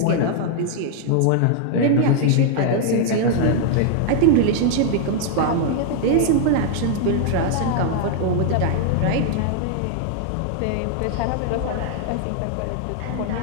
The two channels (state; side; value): different; both; correlation 0.00